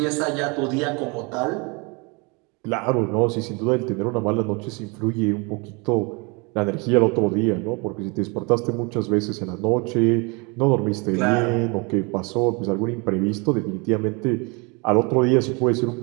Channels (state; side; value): quieter; left; 30.0 dB